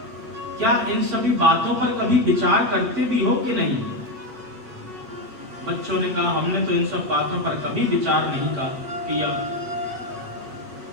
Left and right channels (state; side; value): late; left; 8.2 ms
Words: क्या इन सभी बातों पर कभी विचार करते भी हो कि नहीं? बच्चों ने कहा, हमने तो इन सब बातों पर कभी विचार नहीं किया।